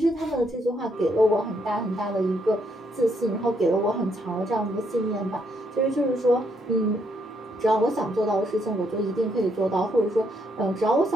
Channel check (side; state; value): both; normal; correlation 0.74